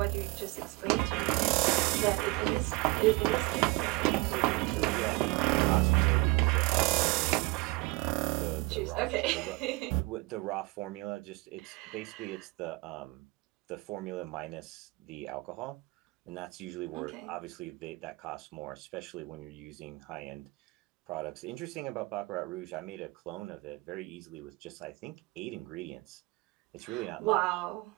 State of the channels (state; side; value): quieter; left; 24.4 dB